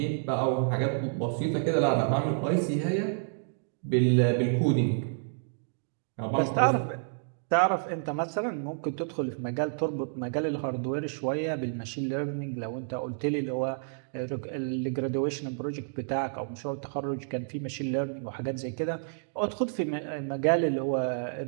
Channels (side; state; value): left; silent; digital silence